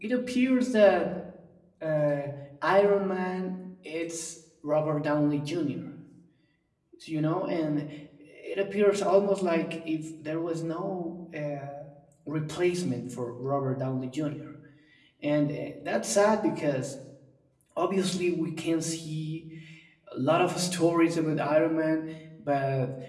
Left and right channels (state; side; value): identical; both; correlation 1.00